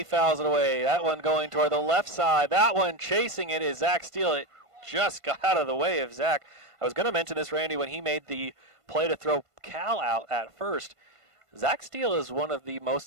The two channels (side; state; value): left; late; 1.5 ms